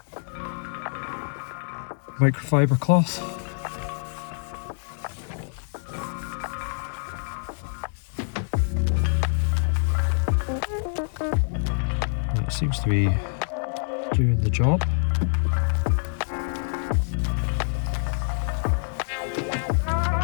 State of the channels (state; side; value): silent; right; digital silence